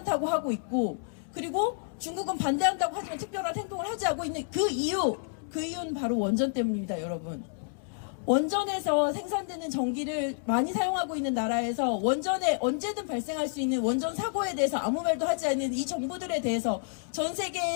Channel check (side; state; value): right; silent; digital silence